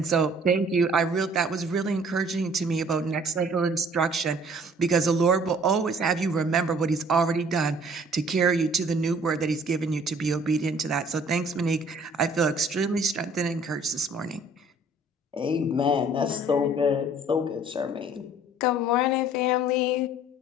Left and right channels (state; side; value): normal; both; correlation 0.54